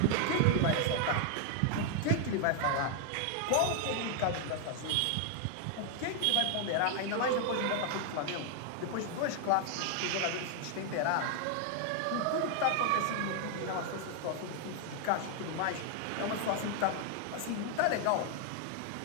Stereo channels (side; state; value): both; different; correlation 0.00